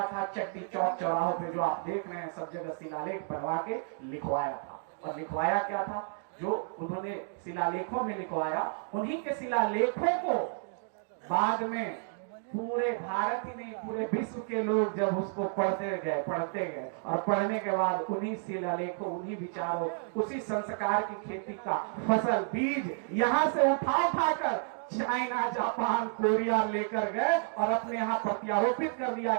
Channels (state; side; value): silent; left; 57 dB below the other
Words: था? चट्टी चौक चौराहों पे जो आप देख रहे हैं सब जगह शिलालेख बनवा के लिखवाया था। और लिखवाया क्या था? जो उन्होंने शिलालेखों में लिखवाया, उन्हीं के शिलालेखों को बाद में पूरे भारत ही नहीं पूरे विश्व के लोग जब उसको पढ़ते गए, और पढ़ने के बाद उन्हीं शिलालेखों, उन्हीं विचारों, उसी संस्कार की खेती का फसल बीज यहाँ से उठा कर चाइना, जापान, कोरिया लेकर गए और अपने यहाँ प्रत्यारोपित कर दिया